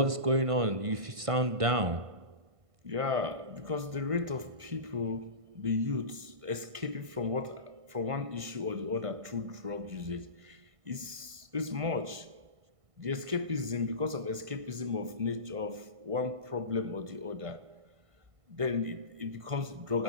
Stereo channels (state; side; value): late; left; 1.5 ms